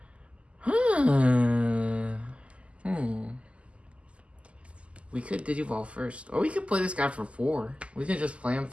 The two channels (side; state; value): left; late; 0.057 ms